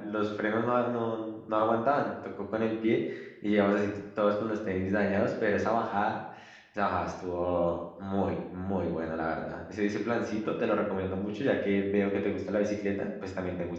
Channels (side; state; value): both; identical; correlation 1.00